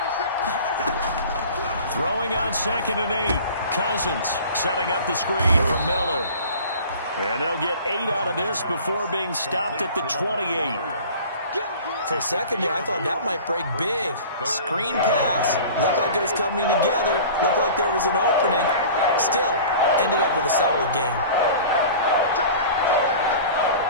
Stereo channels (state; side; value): inverted; both; correlation -0.41